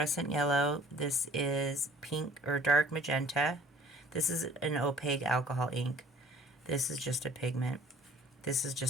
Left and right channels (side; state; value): both; normal; correlation 0.52